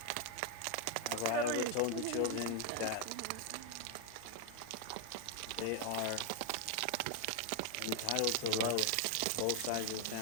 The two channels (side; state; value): both; different; correlation 0.01